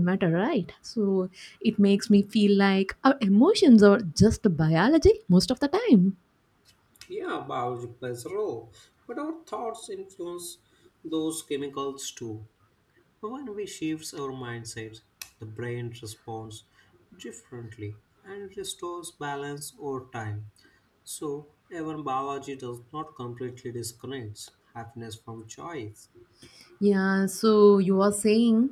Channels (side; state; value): both; identical; correlation 1.00